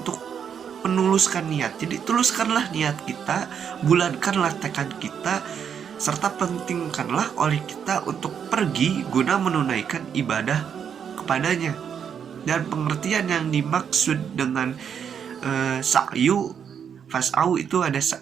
menuluskan niat. Jadi tuluskanlah niat kita, bulatkanlah tekad kita, serta pentingkanlah oleh kita untuk pergi guna menunaikan ibadah kepadanya. Dan pengertian yang dimaksud dengan sa'yu, fas'au itu ada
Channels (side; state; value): left; quieter; 7.7 dB